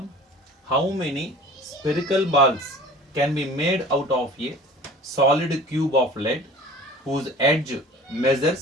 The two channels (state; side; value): normal; both; correlation 0.43